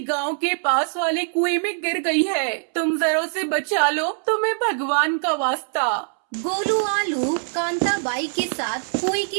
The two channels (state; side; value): silent; left; 64 dB below the other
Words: गांव के पास वाले कुएं में गिर गई है। तुम जरा उसे बचा लो, तुम्हें भगवान का वास्ता। गोलू आलू कांता बाई के साथ कुएं